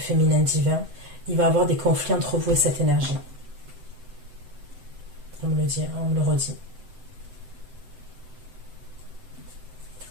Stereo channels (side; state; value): left; late; 7.9 ms